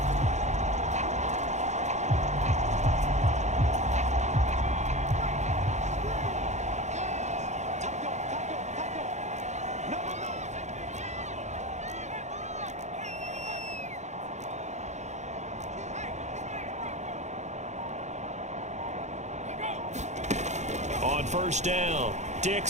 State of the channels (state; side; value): late; left; 0.33 ms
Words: On 1st down,